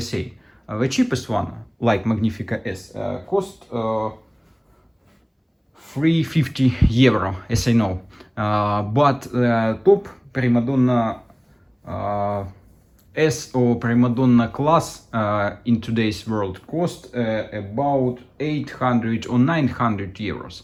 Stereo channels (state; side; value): identical; both; correlation 1.00